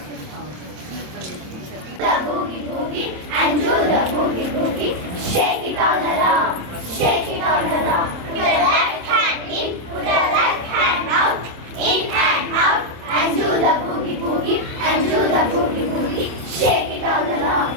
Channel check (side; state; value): left; late; 27 ms